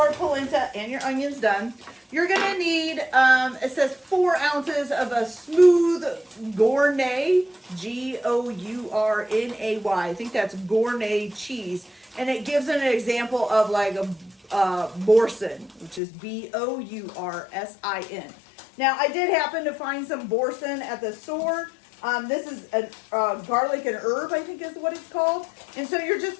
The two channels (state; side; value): drops out; right; at 16.0 s